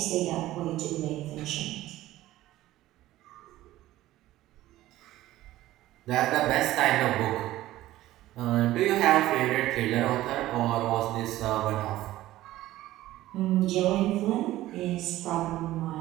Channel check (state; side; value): quieter; left; 15.5 dB